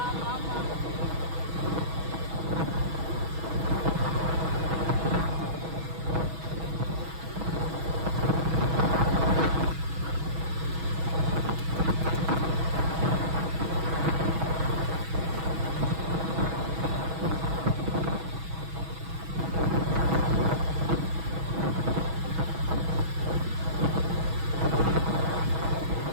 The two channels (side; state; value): left; late; 6.2 ms